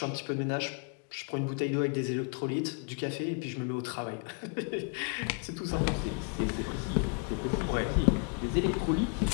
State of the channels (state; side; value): quieter; right; 36.9 dB